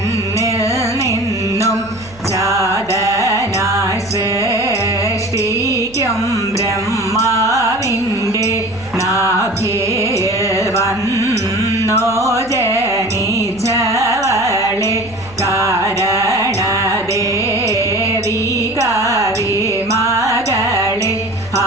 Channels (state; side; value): noise; right; hum, 21 dB below the sound